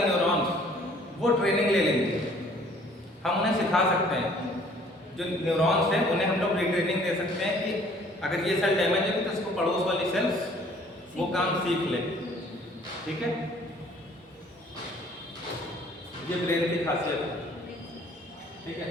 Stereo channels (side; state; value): both; normal; correlation 0.56